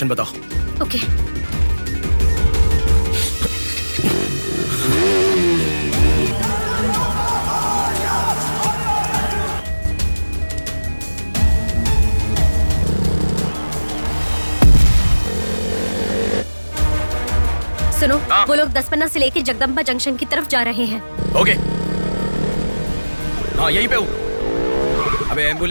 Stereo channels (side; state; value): both; inverted; correlation -1.00